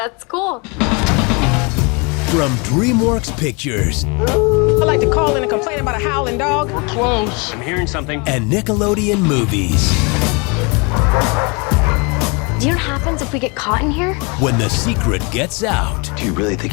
cool. From DreamWorks Pictures I'd like to call in and complain about a howling dog. Close. I'm hearing something. and Nickelodeon Movies. Do you know what happens if we get caught in here? When the secret gets out, Do you really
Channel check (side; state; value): right; quieter; 30.7 dB